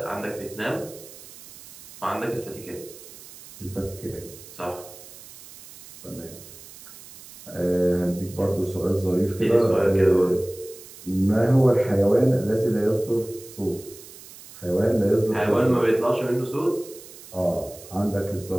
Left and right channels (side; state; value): right; noise; hiss, 18 dB below the sound